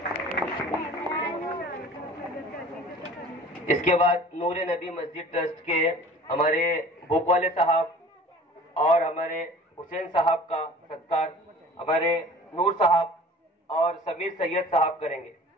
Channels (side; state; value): both; normal; correlation 0.45